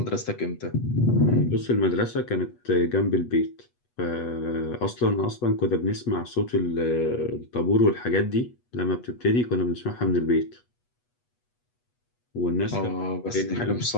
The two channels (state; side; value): late; right; 8.2 ms